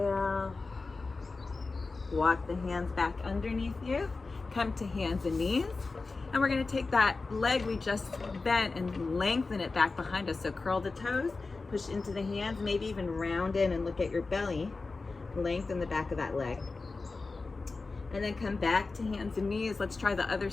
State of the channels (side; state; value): right; quieter; 3.9 dB